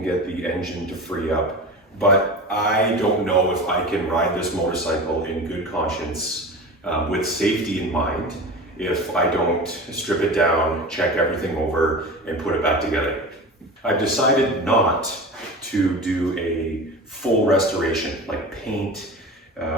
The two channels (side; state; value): both; normal; correlation 0.31